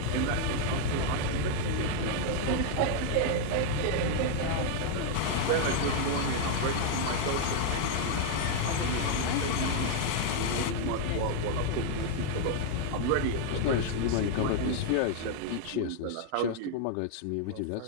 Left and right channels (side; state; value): both; different; correlation 0.00